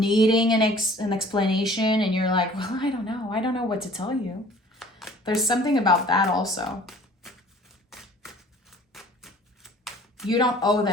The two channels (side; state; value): both; normal; correlation 0.50